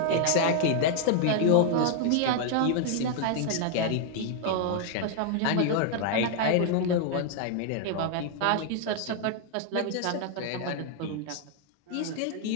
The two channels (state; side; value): different; both; correlation 0.00